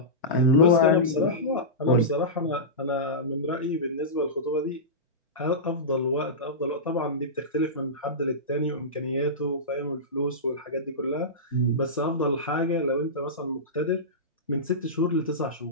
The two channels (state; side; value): normal; both; correlation -0.17